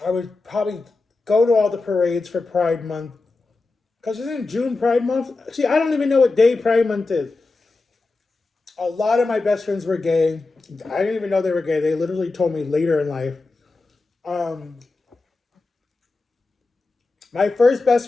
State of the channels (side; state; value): right; quieter; 3.6 dB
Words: I would probably go to all the parades for Pride Month. Because isn't June Pride Month? See, I don't even know what day Pride Month is. A lot of my best friends were gay. I didn't even know they were gay. They literally told me later in life. My first